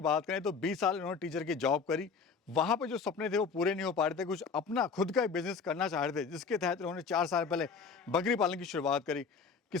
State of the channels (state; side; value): quieter; right; 5.4 dB